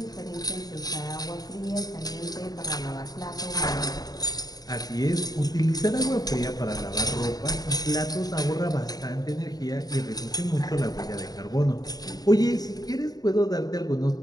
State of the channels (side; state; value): right; late; 0.19 ms